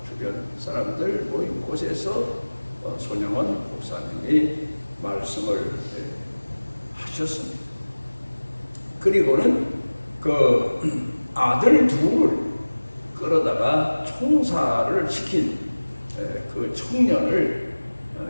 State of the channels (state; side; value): inverted; both; correlation -1.00